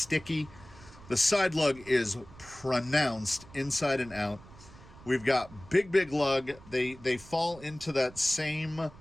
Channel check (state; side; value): noise; right; rumble, 20 dB below the sound